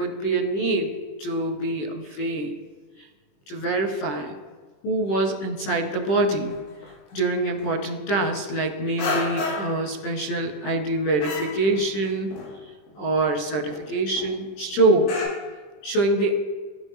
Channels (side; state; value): right; late; 21 ms